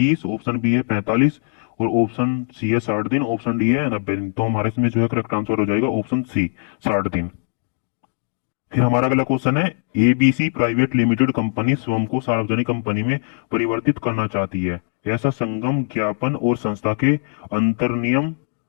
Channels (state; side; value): silent; right; digital silence